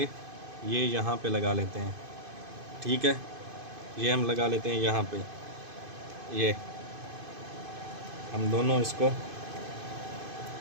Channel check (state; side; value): late; left; 2.5 ms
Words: ये यहाँ पे लगा लेते हैं, ठीक है। ये हम लगा लेते हैं यहाँ पे, ये हम दोनों इसको